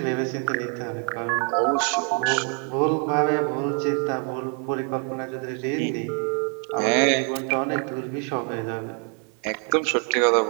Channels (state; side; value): quieter; left; 39.3 dB